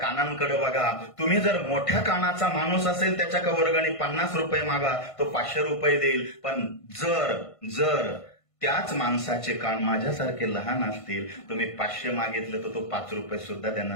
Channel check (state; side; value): late; right; 1.5 ms